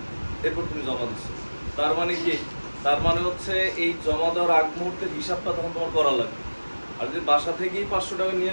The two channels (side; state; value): both; inverted; correlation -1.00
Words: এরপর তুমি জমা দিছো। তার মানে কি, তার মানে হচ্ছে এই জমা দেওয়ার আগ মুহূর্তে হিসাবটা তখন তোমার করা লাগবে। আর যদি বাসা থেকেই 500 টাকা নিয়ে